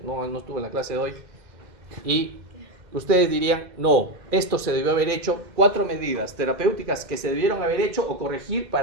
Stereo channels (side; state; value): left; late; 2.0 ms